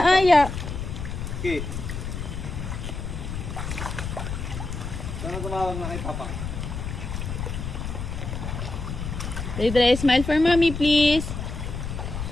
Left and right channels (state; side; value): noise; left; rumble, 5 dB below the sound